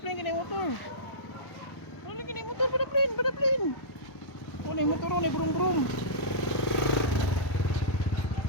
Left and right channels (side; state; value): right; late; 1.1 ms